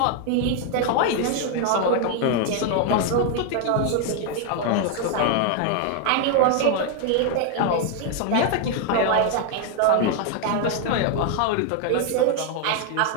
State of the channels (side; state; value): both; different; correlation 0.01